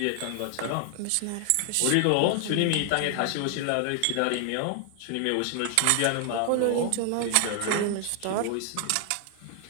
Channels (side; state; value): both; different; correlation 0.00